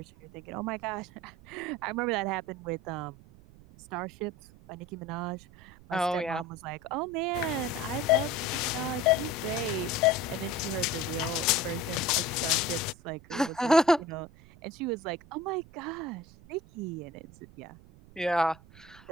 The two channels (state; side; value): noise; right; rumble, 21 dB below the sound